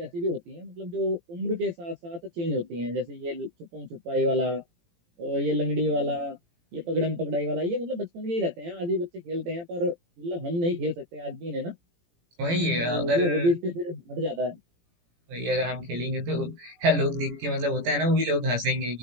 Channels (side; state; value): left; late; 18 ms